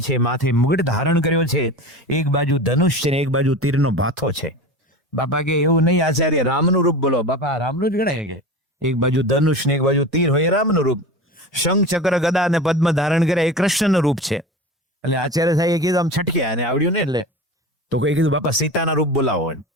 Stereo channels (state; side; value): normal; both; correlation 0.31